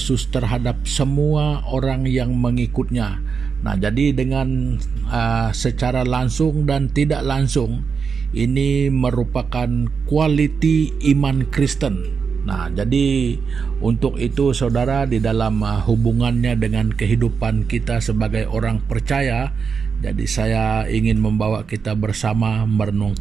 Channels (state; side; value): quieter; left; 5.8 dB